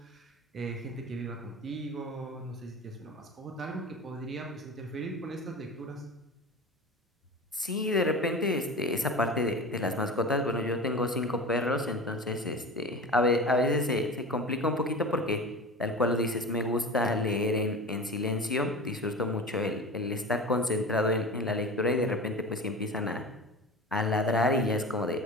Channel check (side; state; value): both; normal; correlation 0.32